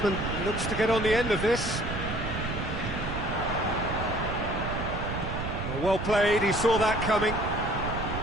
looks to get on the end of this. Well played, he saw that coming.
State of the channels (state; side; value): noise; right; rumble, 5 dB below the sound